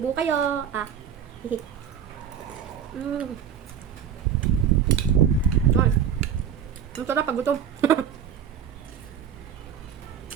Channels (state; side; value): quieter; left; 8.4 dB